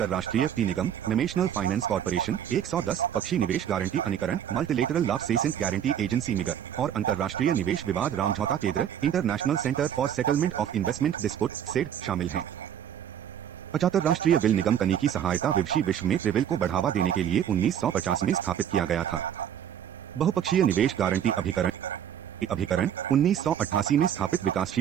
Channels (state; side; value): quieter; left; 9.6 dB